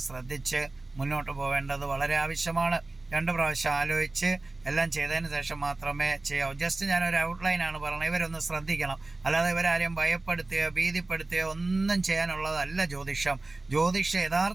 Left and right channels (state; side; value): quieter; left; 3.1 dB